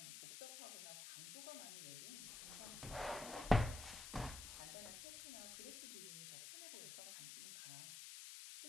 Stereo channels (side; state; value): left; noise; hiss, 8 dB below the sound